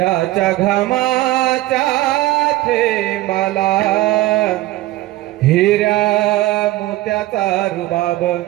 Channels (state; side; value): quieter; left; 17.3 dB